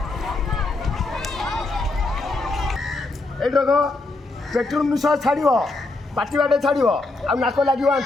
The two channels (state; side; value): quieter; right; 3.2 dB